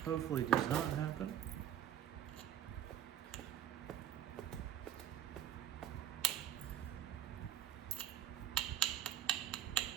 hopefully does not happen.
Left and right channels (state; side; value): quieter; left; 10.6 dB